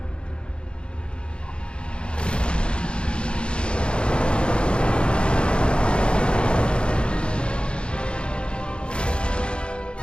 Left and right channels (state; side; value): late; right; 0.055 ms